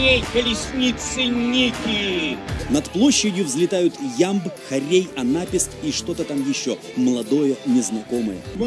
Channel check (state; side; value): identical; both; correlation 1.00